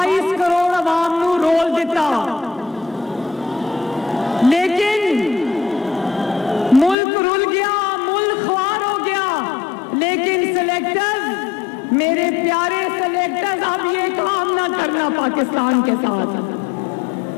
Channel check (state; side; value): drops out; right; at 7.0 s